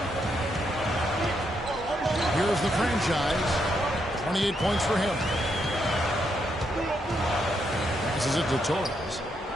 Here's the franchise. 28 points for him. Passes it to Torres.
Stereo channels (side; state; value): both; normal; correlation 0.79